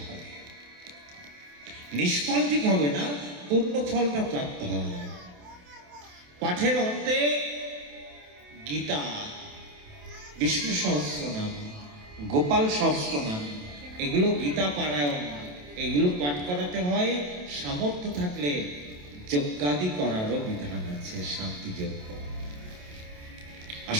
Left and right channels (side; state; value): left; late; 28 ms